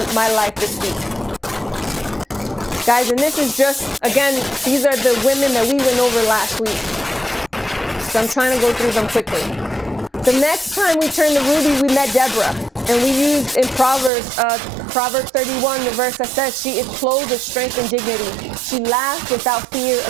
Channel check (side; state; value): left; drops out; at 14.1 s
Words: my life this week? Guys, and this is just, again, these are the women that we went over last week. So I'm trying to go through them quickly. The next time we turned to Ruby, we met Deborah. And we used in Proverbs 31, the verse that says, she is clothed with strength and dignity. She laughs without fear